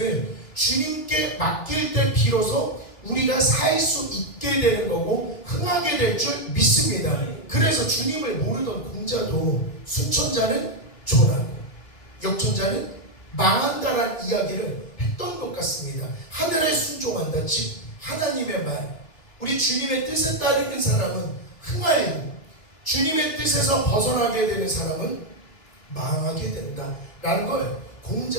주님께 맡길 때 비로소 우리가 살 수 있게 되는 거고 흥하게 될 줄 믿습니다. 그래서 주님을 모르던 공자도 수천자는 존하고 역천자는 망한다라는 이야기를 했던 것 같습니다. 하늘에 순종한다, 즉 하나님의 말, 우리 주님의 뜻에 따르는 사람은 흥하고 주님의 뜻에서 벗어나게 되는 사람은 망하게 된다라는 걸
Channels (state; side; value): late; right; 2.9 ms